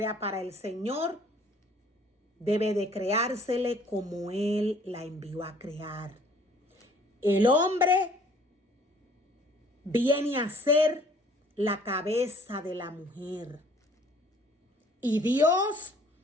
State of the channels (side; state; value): both; normal; correlation 0.56